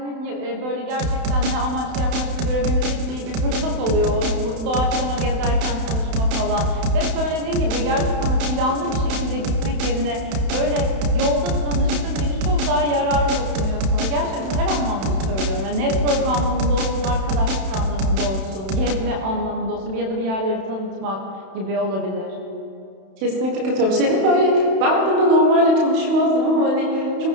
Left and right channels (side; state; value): left; late; 31 ms